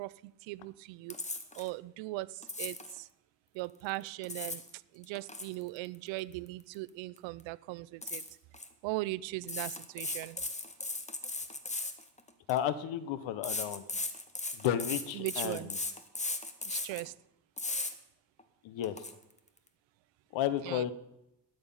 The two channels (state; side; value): normal; both; correlation -0.02